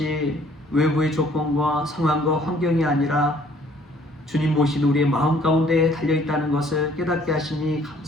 외부의 조건과 상황과 환경이 아니라 주님 모신 우리의 마음 가운데 달려있다는 것을 깨닫게 하시니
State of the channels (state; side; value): normal; both; correlation 0.59